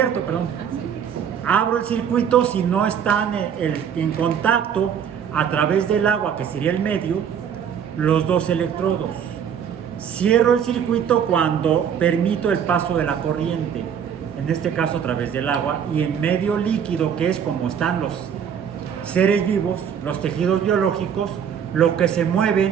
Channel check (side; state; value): left; quieter; 8.1 dB